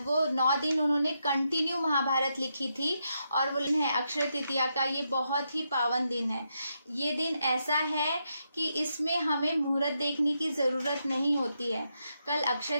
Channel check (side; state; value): both; inverted; correlation -0.82